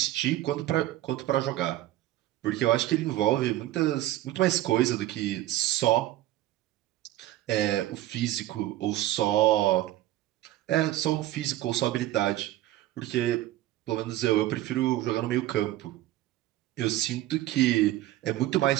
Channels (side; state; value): left; quieter; 14.9 dB